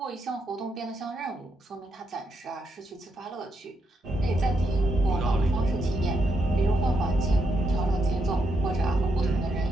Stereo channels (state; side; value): normal; both; correlation 0.80